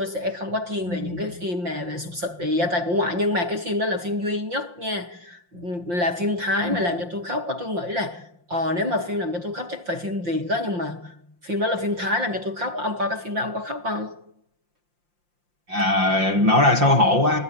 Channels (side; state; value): left; late; 5.7 ms